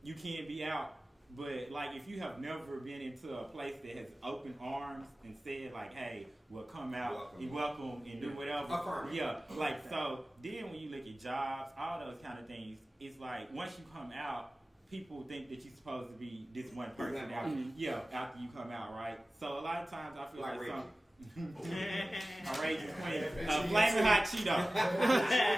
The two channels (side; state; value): both; normal; correlation 0.96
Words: you can be out, But like, if you have never been into a place that has open arms and said like, "Hey, well, come out, you welcome, and do whatever." Yeah, like so. Then when you look at jobs, all those kind of things, it's like once you come out, people think that you're supposed to be this one person after you come out, right? So a lot of times I feel like some. Outrageous queen, flaming hot Cheeto,